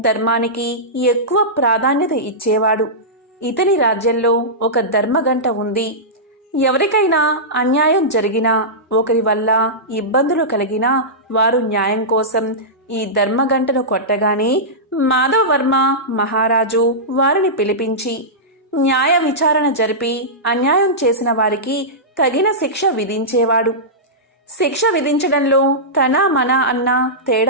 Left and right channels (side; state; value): both; normal; correlation -0.14